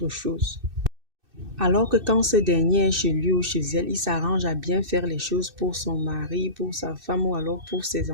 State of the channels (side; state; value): left; late; 2.6 ms